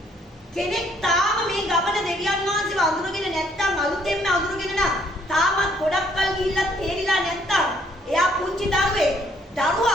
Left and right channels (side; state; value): both; normal; correlation 0.66